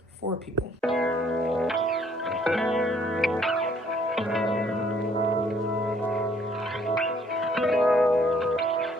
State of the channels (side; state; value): both; normal; correlation 0.63